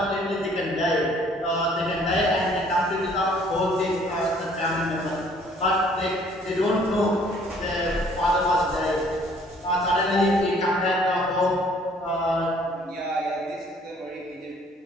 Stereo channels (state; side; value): normal; both; correlation 0.59